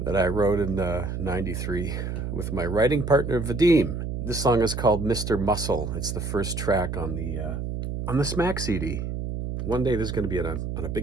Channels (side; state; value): right; noise; hum, 4 dB below the sound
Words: that I wrote in '93 with my writing partner Vadim. This song is called "Mr. Muscle." It's the first track on the Smack CD. One day this is going to be on a